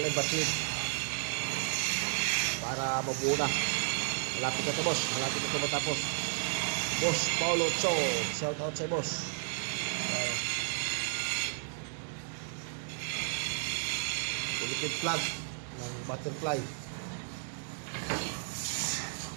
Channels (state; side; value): silent; left; 56 dB below the other